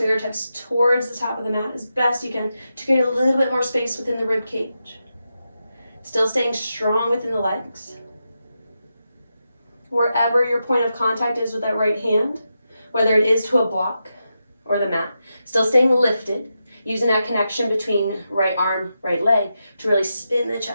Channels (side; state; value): both; inverted; correlation -0.88